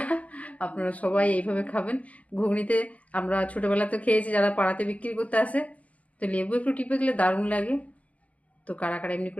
আপনারা সবাই এইভাবে খাবেন। ঘুগনিতে আমরা ছোটোবেলাতে খেয়েছি, যারা পাড়াতে বিক্রি করতে আসে, তো লেবু একটু টিপে দিলে দারুণ লাগে। তো কারা কারা এমনি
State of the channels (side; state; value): right; late; 0.067 ms